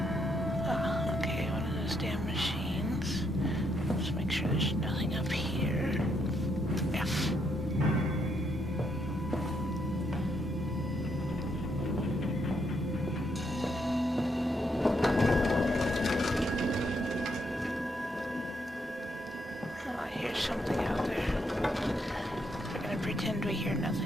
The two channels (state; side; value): normal; both; correlation 0.76